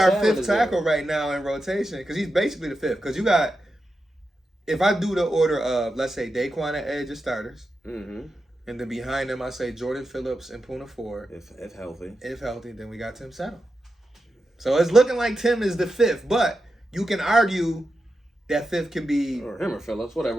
fifth tackle right now in rotation, because he's basically the fifth. Because you got, if I do the order of, let's say Daquan at edge as starters. Mm-hmm. And then behind him, I say Jordan Phillips and Puna Ford. If healthy. If healthy, then we got Tim Settle. So it's looking like Tim is the fifth, but you can argue that fifth can be or him or Phillips, whatever.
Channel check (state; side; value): normal; both; correlation 0.89